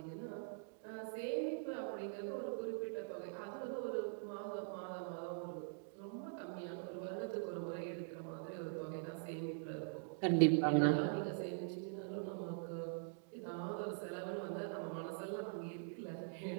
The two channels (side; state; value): left; silent; digital silence